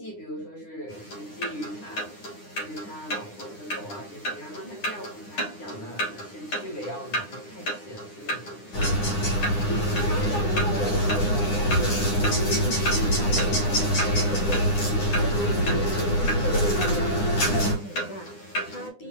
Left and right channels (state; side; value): late; right; 9.8 ms